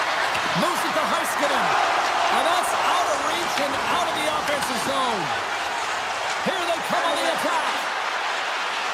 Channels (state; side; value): identical; both; correlation 1.00